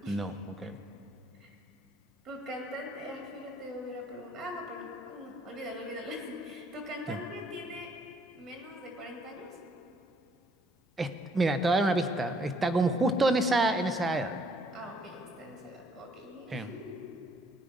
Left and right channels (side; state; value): both; normal; correlation 0.65